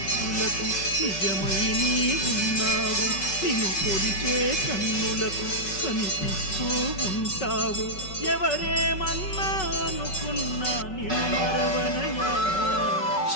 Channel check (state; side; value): late; right; 5.3 ms